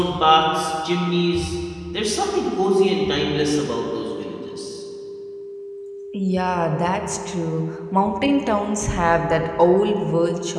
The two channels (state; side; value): identical; both; correlation 1.00